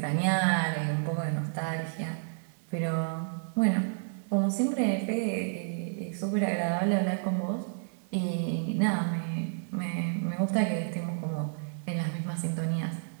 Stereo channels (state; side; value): silent; left; digital silence